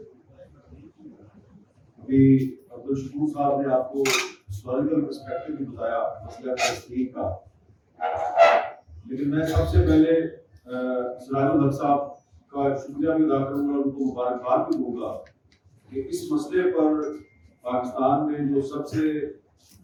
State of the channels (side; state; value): both; identical; correlation 1.00